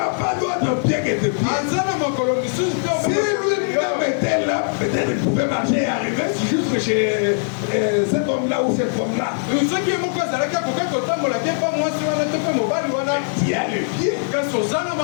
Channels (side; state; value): right; silent; 57 dB below the other